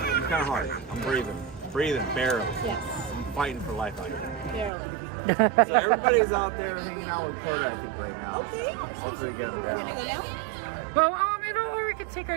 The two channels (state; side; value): drops out; left; at 4.7 s